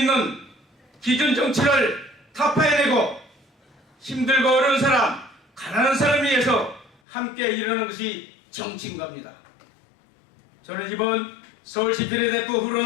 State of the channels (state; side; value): drops out; right; at 7.0 s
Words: 기존 정치를 타파해내고 힘들고 어려운 사람, 가난한 사람을 위해서 함께 일하는 것이 정치인 겁니다. 저는 이번 서울시 비례대표 후로